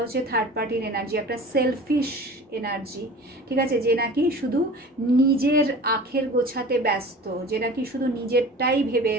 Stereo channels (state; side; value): normal; both; correlation 0.40